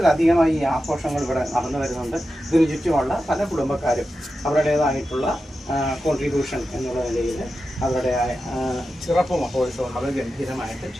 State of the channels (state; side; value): normal; both; correlation 0.91